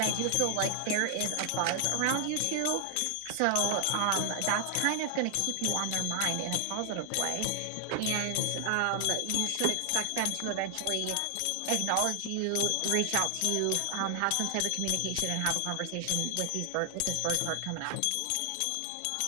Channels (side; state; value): both; different; correlation 0.00